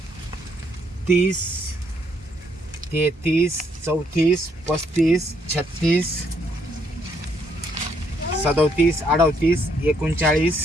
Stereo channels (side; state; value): both; normal; correlation 0.71